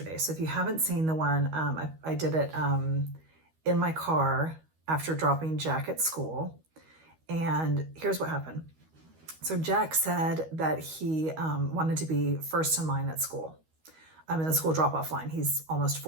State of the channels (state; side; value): late; left; 13 ms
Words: So if you haven't seen the one, I did it in my car after dropping Jack at school. And here's what happened. So Jack said that he wanted to be first in line at school. I'm in the school drop-off line. He's almost